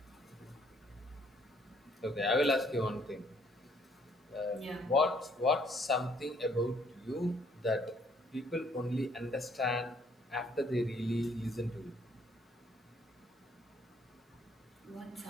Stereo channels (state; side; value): normal; both; correlation 0.65